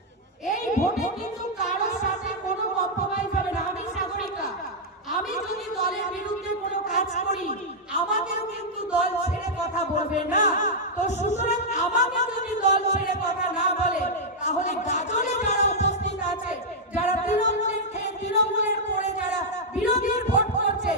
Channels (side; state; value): both; normal; correlation -0.06